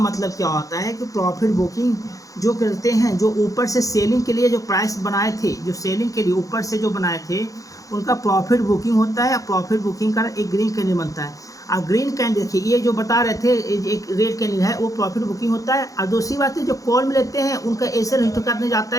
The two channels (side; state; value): right; late; 0.16 ms